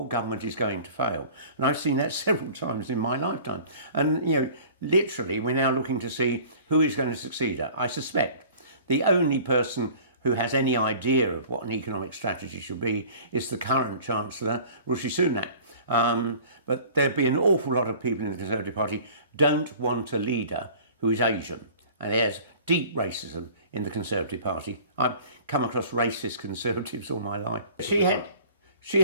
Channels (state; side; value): inverted; both; correlation -0.46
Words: government is going to fail. And I've seen that several times in my lifetime. And, literally, we're now looking to see who is going to succeed her. I suspect the only person who has any idea of what an economic strategy should be is the current Chancellor, Rishi Sunak. But there'd be an awful lot of people in the Conservative Party don't want a leader who is Asian. And there's deep racism in the Conservative Party. I've come across racist Conservatives all my life. She